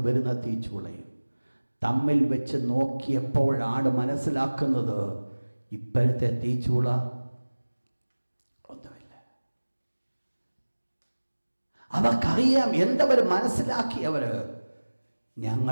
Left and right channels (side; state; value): both; inverted; correlation -1.00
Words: വരുന്ന തീച്ചൂളയും തമ്മിൽ വെച്ച് നോക്കിയപ്പോഴാണ് മനസ്സിലാക്കുന്നത് ഇപ്പോഴത്തെ തീച്ചൂള ഒന്നുമില്ല. അവർക്കറിയാം, എന്തവർ മനസ്സിലാക്കിയവര്,